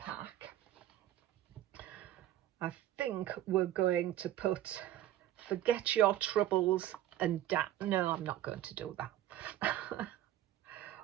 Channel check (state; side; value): quieter; left; 13.0 dB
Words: I think we're going to put forget your troubles and no, I'm not going to do that.